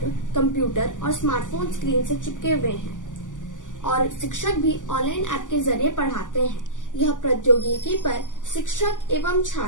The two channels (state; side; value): late; right; 0.87 ms